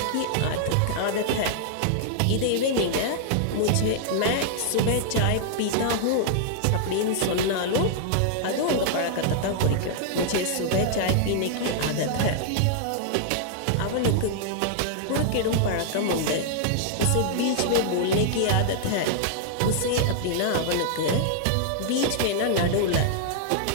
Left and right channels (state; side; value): different; both; correlation -0.01